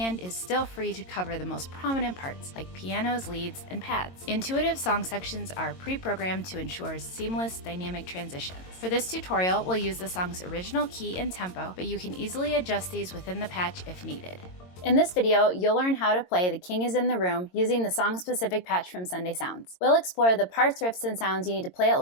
is still free to cover the most prominent parts, like pianos, leads, and pads. Intuitive song sections are pre-programmed to ensure seamless, dynamic transitions. For this tutorial, we'll use the song's original key and tempo, but you can easily adjust these within the patch if needed. In this video, you'll learn how to play The King is in the Room using the song-specific patch from Sunday Sounds. We'll explore the parts, riffs, and sounds you need to play it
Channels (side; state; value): right; late; 22 ms